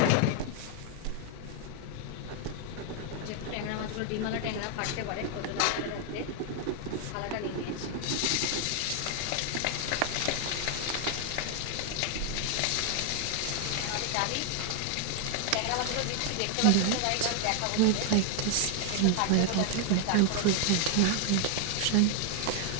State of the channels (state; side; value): different; both; correlation 0.00